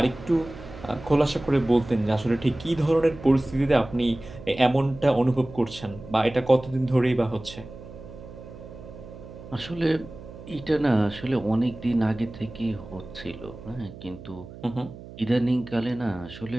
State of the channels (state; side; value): noise; right; hum, 16 dB below the sound